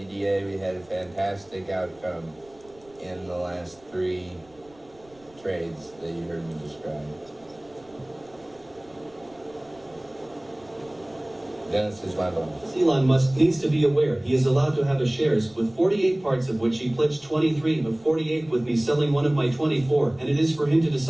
We had a fantastic outcome in the last 3 trades that you heard me describe. Dennis is my boss. Elon Musk needs to be aware he is allowed to have a shares with 48 parts, of which he pledged 23 of 48, with me selling one of my 24, and it is for him to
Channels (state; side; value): noise; right; rumble, 29 dB below the sound